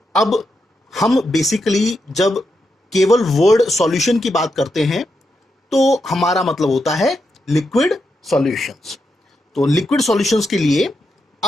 अब हम basically जब केवल word solution की बात करते हैं तो हमारा मतलब होता है लिक्विड सॉल्यूशंस. तो लिक्विड सॉल्यूशंस के लिए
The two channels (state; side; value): normal; both; correlation 0.84